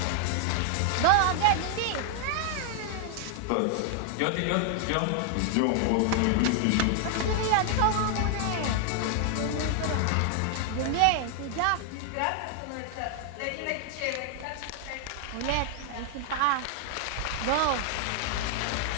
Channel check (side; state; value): both; different; correlation 0.00